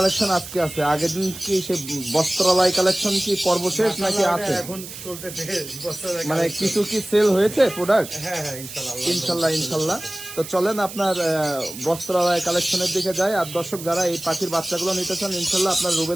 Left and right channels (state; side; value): noise; right; hiss, 12 dB below the sound